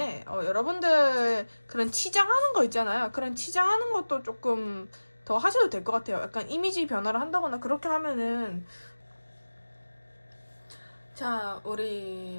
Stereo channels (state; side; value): inverted; both; correlation -1.00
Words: 여러분들 그런 치장하는 거 있잖아요. 그런 치장하는 것도 조금 더 하셔도 될 것 같아요. 약간 이미지 변화를 한다거나 그렇게 하면은 자